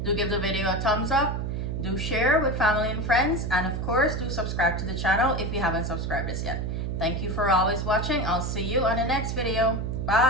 Do give the video a thumbs up, do share with family and friends, and of course do subscribe to the channel if you haven't subscribed us yet. Thank you for always watching. I'll see you on the next video.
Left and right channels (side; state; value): right; noise; hum, 2 dB below the sound